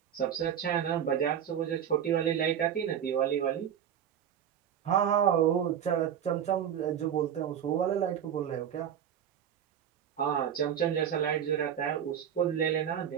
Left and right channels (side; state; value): left; quieter; 9.2 dB